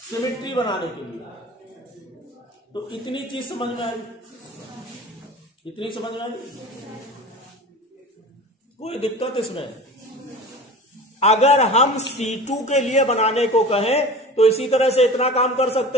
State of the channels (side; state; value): both; normal; correlation 0.37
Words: सिमेट्री बनाने के लिए। तो इतनी चीज समझ में आई, इतनी समझ में आई, कोई दिक्कत इसमें? अगर हम C2 के लिए बनाने को कहें तो इसी तरह से इतना काम कर